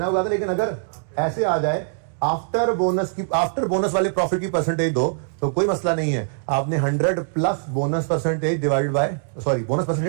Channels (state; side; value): silent; left; 64 dB below the other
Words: आपको कहा था। लेकिन अगर ऐसे आ जाए आफ्टर बोनस वाले प्रॉफिट की परसेंटेज दो तो कोई मसला नहीं है, आपने 100 plus bonus percentage divide by bonus